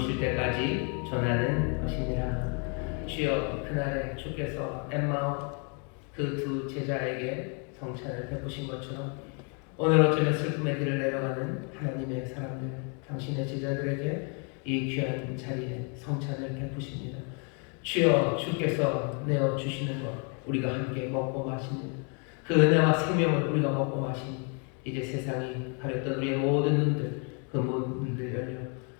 때까지 전하는 것이니라. 주여 그날에 주께서 엠마오 그 두 제자에게 성찬을 베푸신 것처럼 오늘 어쩌면 슬픔의 길을 내려가는 하나님의 사람들 당신의 제자들에게 이 귀한 자리에 성찬을 베푸십니다. 주여 주께서 내어주시는 것 우리가 함께 먹고 마십니다. 그 은혜와 생명을 우리가 먹고 마시니 이제 세상이 가렸던 우리의 모든 눈들 그 문들 열려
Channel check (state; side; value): quieter; right; 37.7 dB